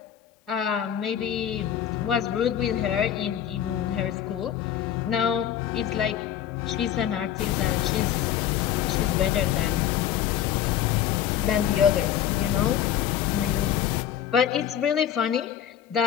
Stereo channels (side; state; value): right; quieter; 10.2 dB